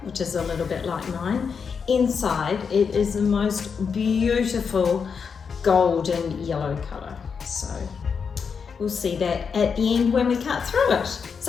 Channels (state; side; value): quieter; right; 6.0 dB